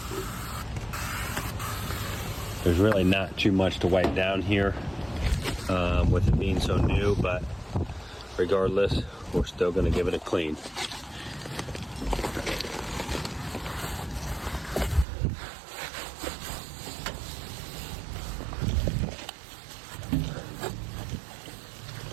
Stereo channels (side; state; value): left; drops out; at 15.1 s